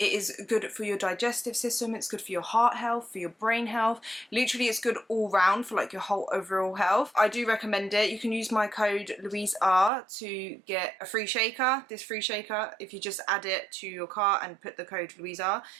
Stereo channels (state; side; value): drops out; left; at 9.9 s